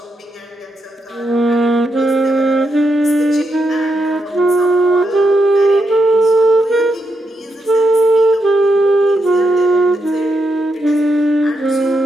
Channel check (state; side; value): normal; both; correlation 0.82